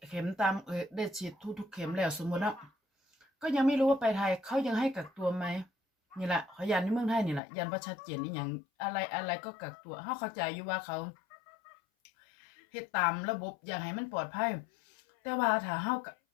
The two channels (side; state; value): right; drops out; at 7.4 s